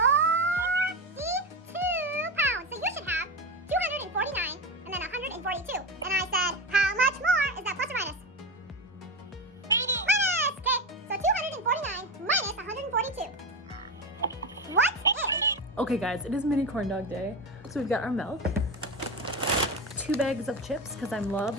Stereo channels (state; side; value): normal; both; correlation 0.19